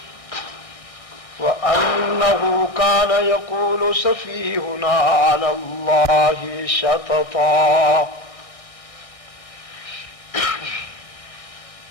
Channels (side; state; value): right; late; 1.6 ms